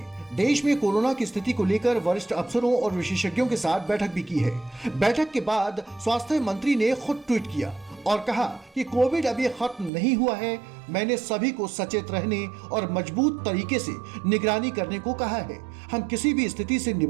देश में कोरोना की स्थिति को लेकर वरिष्ठ अफसरों और विशेषज्ञों के साथ बैठक भी की है। बैठक के बाद स्वास्थ्य मंत्री ने खुद ट्वीट किया और कहा कि कोविड अभी खत्म नहीं हुआ है। मैंने सभी को सचेत रहने और मजबूत तरीके से निगरानी करने को कहा है। हम किसी भी स्थिति से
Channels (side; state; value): left; drops out; at 9.9 s